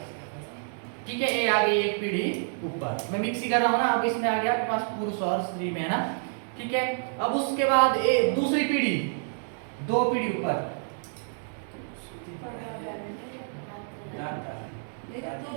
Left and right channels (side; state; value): left; silent; digital silence